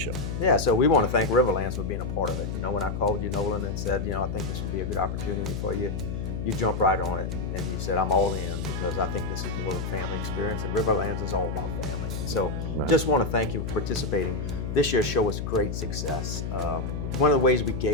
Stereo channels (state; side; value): noise; left; hum, 4 dB below the sound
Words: Yeah, so we want to thank Riverlands for being a part of it. You know, when I called you, Nolan, and said, I think this would be a good opportunity for you, you jumped right on it and you said, I'm all in because I think this is more of a family experience, and Riverlands is all about family. And so just want to thank you for participating. This year's show was a great success. One of the ways we